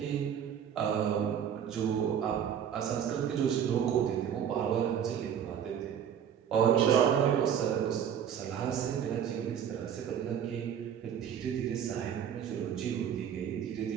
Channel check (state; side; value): quieter; left; 8.7 dB